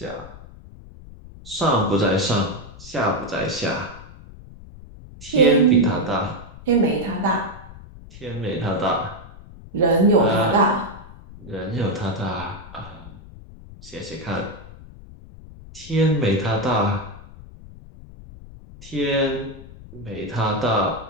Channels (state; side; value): noise; left; rumble, 18 dB below the sound